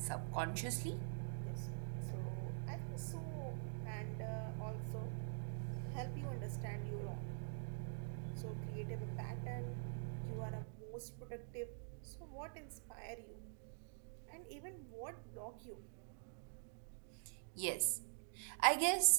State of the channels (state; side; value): silent; left; digital silence